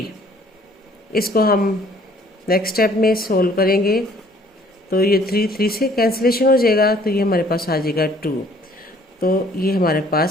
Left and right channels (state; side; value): normal; both; correlation 0.58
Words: इसको हम नेक्स्ट स्टेप में सोल्व करेंगे तो ये 3 से कैंसिलेशन हो जाएगा तो ये हमारे पास आ जाएगा 2। तो ये हमारे